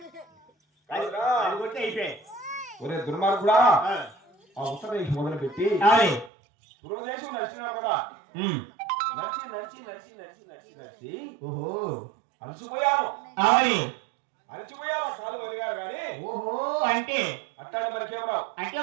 అది కొట్టి అయిపోయాయి. ఒరే దుర్మార్గుడా ఆ ఉత్తరదేశం మొదలు పెట్టి పూర్వదేశం నడిచినావు కదా నడిచి నడిచి నడిచి నడిచి నడిచి నడిచి ఓహో అలసిపోయాము కాలు వదిగారు కానీ ఓహో అంటే అట్టాడు మనకేమరావు అంటే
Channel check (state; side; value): drops out; left; at 6.3 s